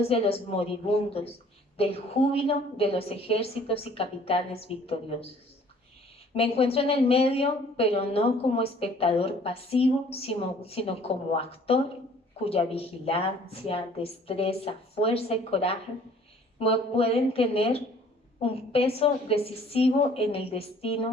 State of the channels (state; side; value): normal; both; correlation 0.55